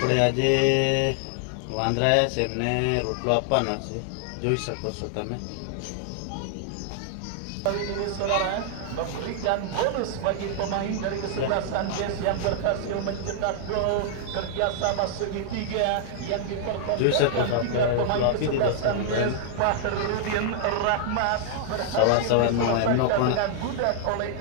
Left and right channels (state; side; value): different; both; correlation -0.01